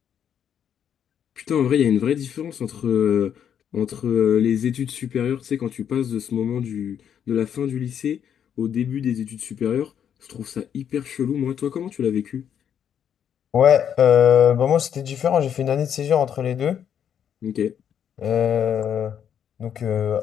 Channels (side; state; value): right; quieter; 8.7 dB